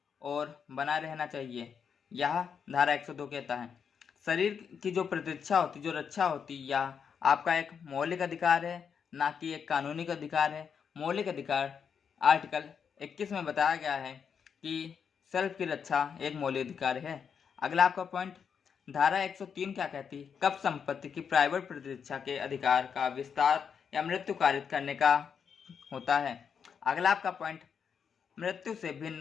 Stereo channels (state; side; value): quieter; right; 6.9 dB